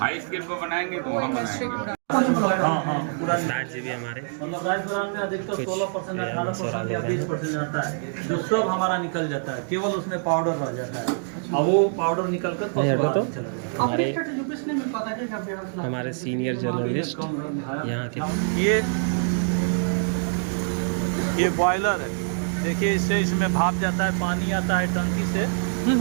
स्केल पर बनाएंगे तो वहाँ बनाएंगे। हाँ पूरा स्टार्च भी हमारे मतलब 10 ग्राम में अधिकतर कुछ 16% या 18% या 20% आता है, जो सब हमारा निकल जाता है, केवल उसमें पाउडर रह जाता है। अब वो पाउडर निकल कर हमारे सीनियर जर्नलिस्ट यहाँ के। ये बॉयलर है, देखिए इससे इसमें भाप जाता है, पानी आता है टंकी से,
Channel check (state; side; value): silent; left; digital silence